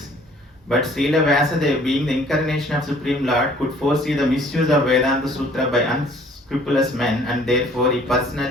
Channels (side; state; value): both; normal; correlation 0.56